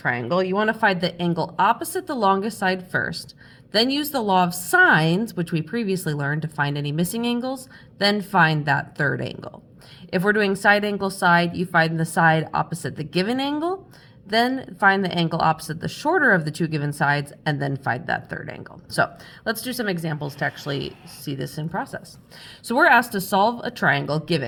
you want to find the angle opposite the longest side first, then use the law of sines, which we previously learned, to find any missing angles, then find that third angle. If we're doing side, angle, side, you find the side opposite the given angle, then find the angle opposite the shorter of the two given sides, and then find that third angle. So let's do some examples to actually see this in process. So we're asked to solve a triangle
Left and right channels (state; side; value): identical; both; correlation 1.00